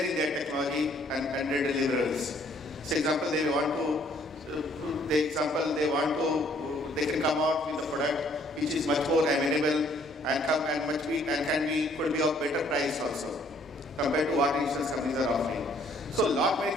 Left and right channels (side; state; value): both; normal; correlation 0.63